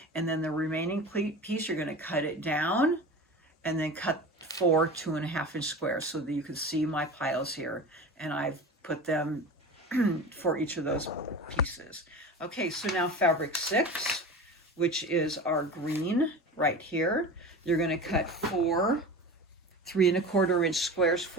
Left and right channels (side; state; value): both; normal; correlation 0.33